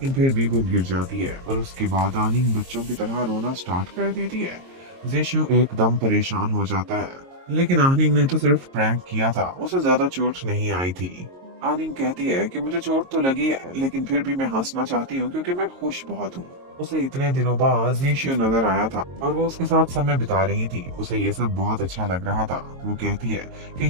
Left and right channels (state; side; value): late; left; 22 ms